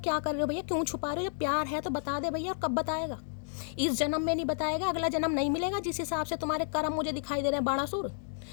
कर रहे हो भैया, क्यों छुपा रहे हो? जब प्यार है तो बता दे भैया। और कब बताएगा? इस जन्म में नहीं बताएगा, अगला जन्म नहीं मिलेगा जिस हिसाब से तुम्हारे कर्म मुझे दिखाई दे रहे हैं बाणासुर।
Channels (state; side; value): silent; right; 57 dB below the other